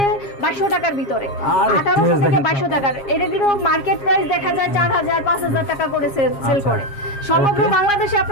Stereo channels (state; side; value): late; right; 7.3 ms